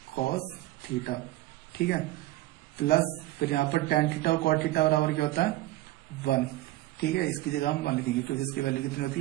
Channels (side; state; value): left; quieter; 16.8 dB